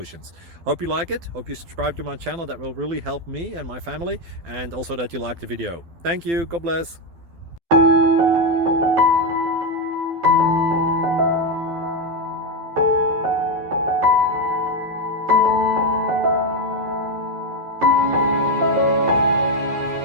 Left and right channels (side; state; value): left; late; 12 ms